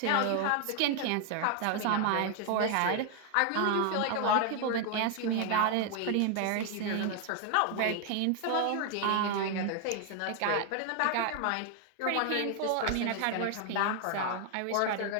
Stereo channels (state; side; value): different; both; correlation 0.01